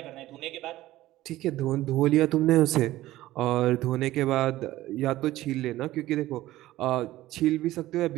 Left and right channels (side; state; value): left; quieter; 15.8 dB